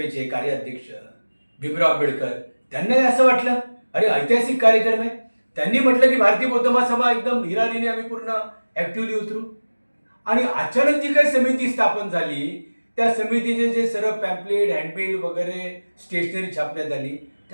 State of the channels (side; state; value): both; inverted; correlation -1.00